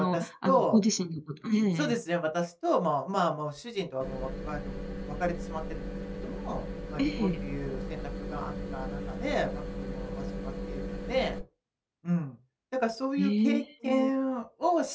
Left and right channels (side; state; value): both; identical; correlation 1.00